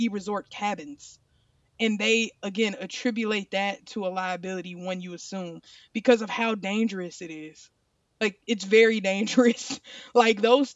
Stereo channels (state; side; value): identical; both; correlation 1.00